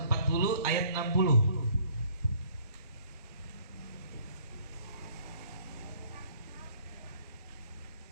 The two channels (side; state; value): both; inverted; correlation -0.58